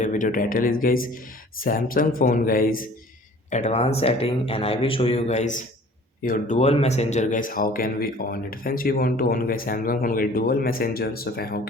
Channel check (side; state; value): both; normal; correlation 0.49